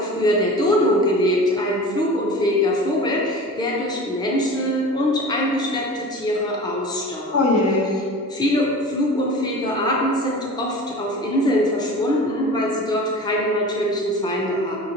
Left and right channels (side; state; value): both; normal; correlation 0.37